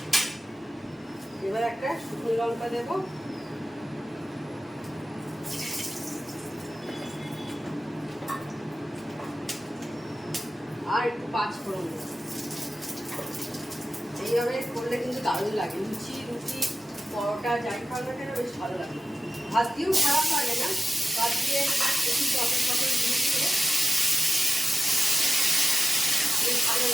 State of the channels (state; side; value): normal; both; correlation 0.94